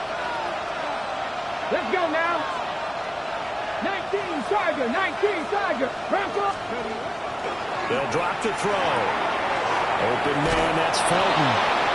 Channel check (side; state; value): both; identical; correlation 1.00